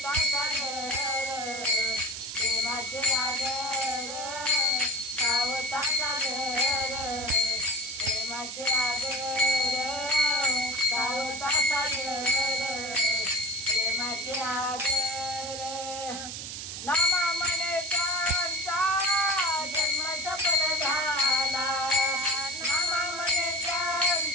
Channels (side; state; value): right; noise; hiss, 7 dB below the sound